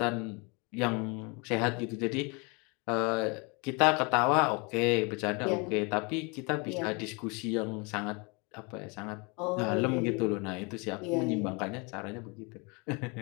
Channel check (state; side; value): quieter; right; 30.5 dB